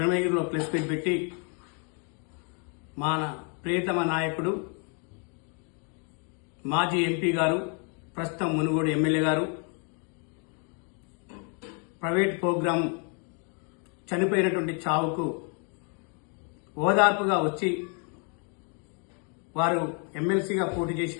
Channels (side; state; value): right; quieter; 38.3 dB